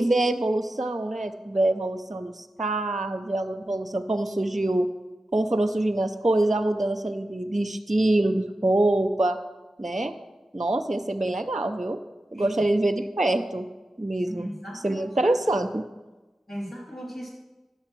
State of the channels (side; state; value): both; normal; correlation 0.92